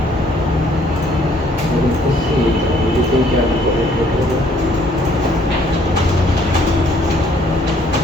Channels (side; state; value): both; normal; correlation 0.63